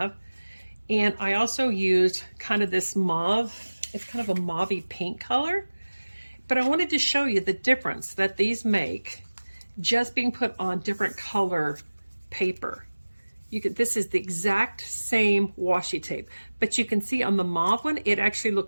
And I also used kind of this mauve. It's kind of a mauvey pink color. But I wanted to show you the difference that these make just being put on different color paper. This is the exact same washi tape, but you can see on the mauve one, it actually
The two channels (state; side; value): inverted; both; correlation -1.00